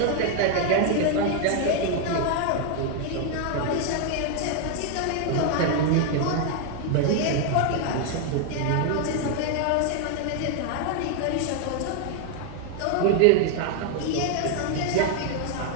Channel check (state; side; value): different; both; correlation 0.00